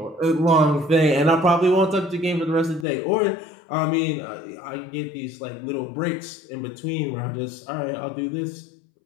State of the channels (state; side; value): drops out; right; at 2.9 s